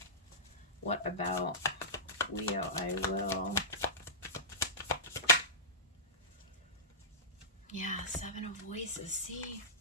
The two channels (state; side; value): normal; both; correlation -0.19